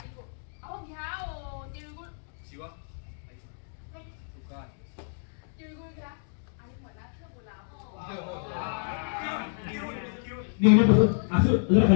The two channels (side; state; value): right; silent; digital silence